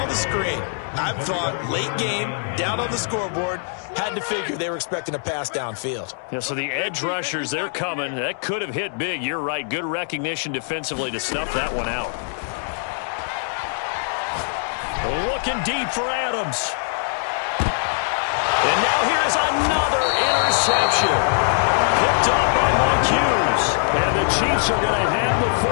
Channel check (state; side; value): silent; right; digital silence